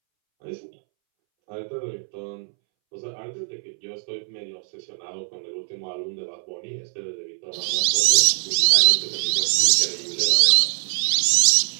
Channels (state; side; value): silent; left; 64 dB below the other